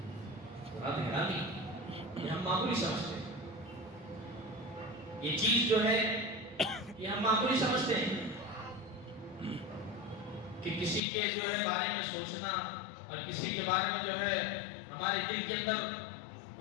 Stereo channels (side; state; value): right; drops out; at 11.0 s